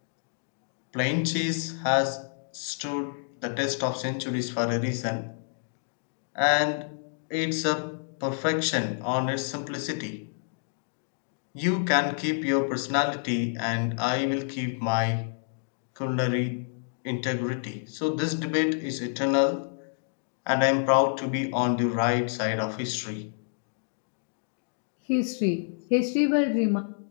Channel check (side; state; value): right; silent; digital silence